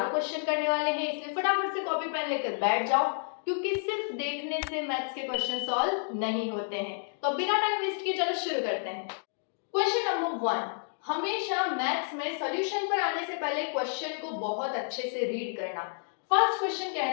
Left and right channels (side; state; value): right; silent; digital silence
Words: क्वेश्चन करने वाले हैं, इसलिए फटाफट से कॉपी पेन लेकर बैठ जाओ क्योंकि सिर्फ देखने से मैथ्स के क्वेश्चन सॉल्व नहीं होते हैं। तो बिना टाइम वेस्ट किए चलो शुरू करते हैं। क्वेश्चन नंबर 1, हमेशा मैथ्स में सॉल्यूशन पर आने से पहले क्वेश्चन को बहुत अच्छे से रीड करना। फर्स्ट क्वेश्चन कह